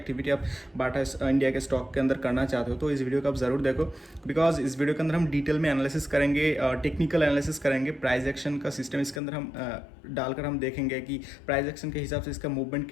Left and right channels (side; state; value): right; drops out; at 9.2 s